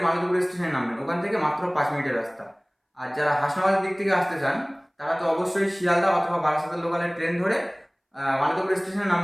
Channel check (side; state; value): both; identical; correlation 1.00